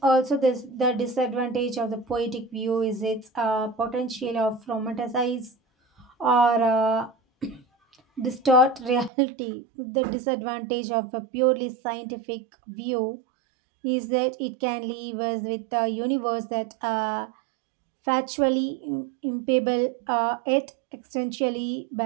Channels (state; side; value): drops out; left; at 9.1 s